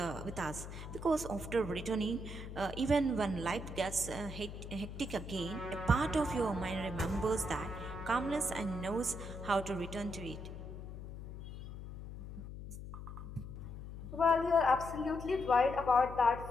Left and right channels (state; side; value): noise; left; hum, 10 dB below the sound